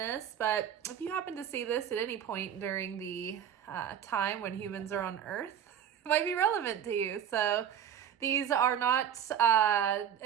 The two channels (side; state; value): left; quieter; 9.1 dB